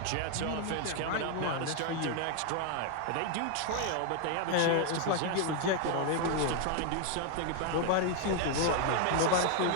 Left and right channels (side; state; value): both; different; correlation 0.00